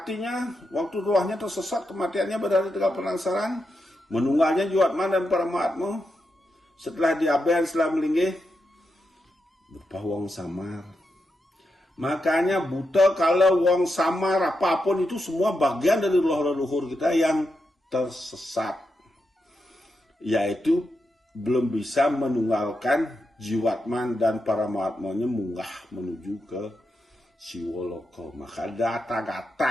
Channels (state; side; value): normal; both; correlation 0.86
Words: waktu rohnya tersesat, kematiannya berada di tegal penasaran, menunggalnya jiwatman dan paramatma. Setelah diaben, setelah melinggih, berupa wong samar. Makanya buta kalau wong samar apapun itu semua bagian dari roh leluhur kita yang tersesat. Yaitu belum bisa menunggalkan jiwatman dan paramatmanya munggah menuju ke Siwoloka. Maka